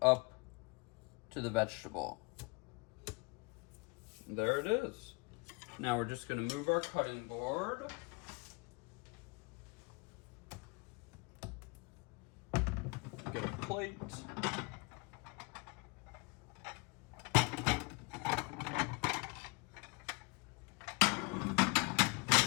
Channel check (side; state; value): right; quieter; 29.4 dB